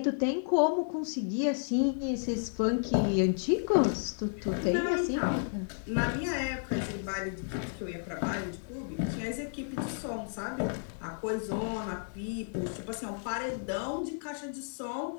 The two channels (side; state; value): right; silent; digital silence